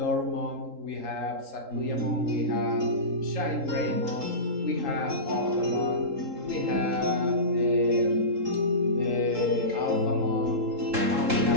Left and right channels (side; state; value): left; late; 3.7 ms